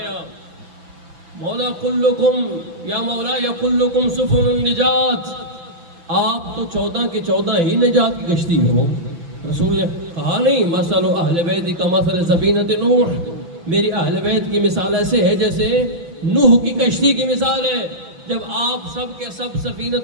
مولا کلکم یا مولا یا کلکم سفن النجات، آپ تو 14 کے 14 ہی نجات کی کشتی ہو۔ رسول نے کہا نہیں، مثل اہل بیت کا مثل سفینۃ نوح، میری اہل بیت کی مثال ایسے ہے جیسے نوح کی کشتی کی مثال ہے۔ جب آپ سب کے سب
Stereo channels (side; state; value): left; late; 5.9 ms